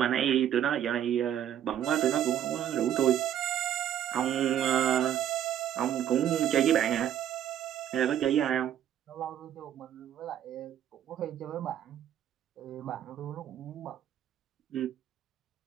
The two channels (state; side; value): quieter; left; 10.5 dB